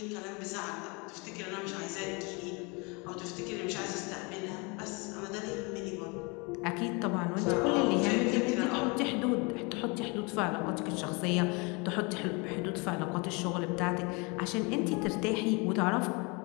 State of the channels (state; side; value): quieter; right; 29.5 dB